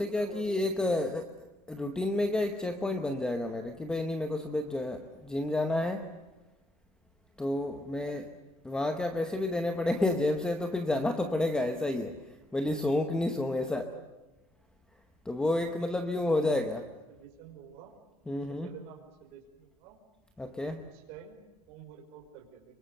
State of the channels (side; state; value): both; normal; correlation 0.80